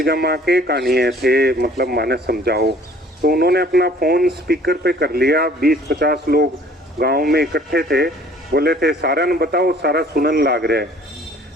के कहानी है थे, मतलब माने समझाओ। तो उन्होंने अपना फ़ोन स्पीकर पे कर लिया, 20-50 लोग गांव में इकट्ठे थे, बोले थे सारा न बताओ, सारा सुनन लाग रहा है।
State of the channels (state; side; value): normal; both; correlation 0.54